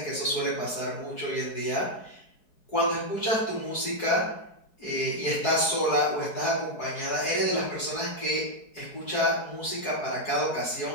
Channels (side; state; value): right; late; 4.7 ms